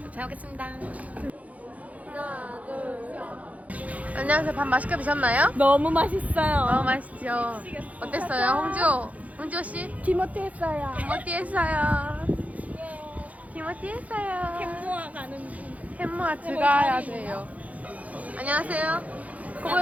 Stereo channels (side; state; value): left; late; 0.070 ms